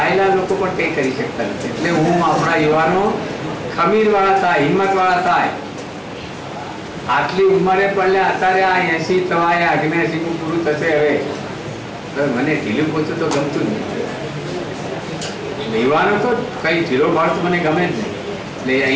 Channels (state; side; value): identical; both; correlation 1.00